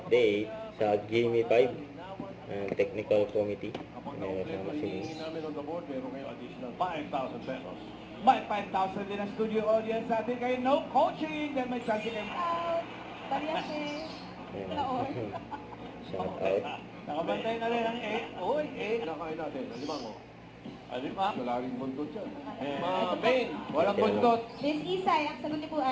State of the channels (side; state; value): both; identical; correlation 1.00